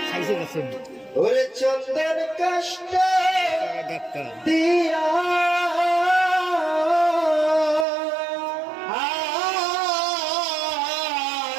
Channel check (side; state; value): left; drops out; at 7.9 s